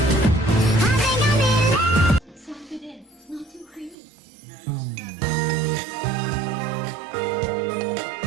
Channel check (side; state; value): left; drops out; at 4.0 s